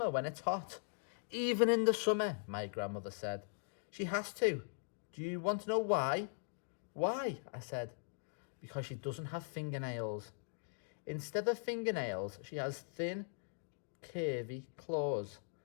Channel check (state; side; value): silent; right; digital silence